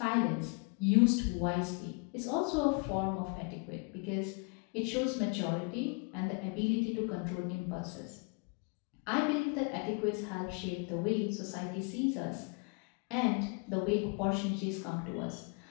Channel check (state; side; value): quieter; right; 33.7 dB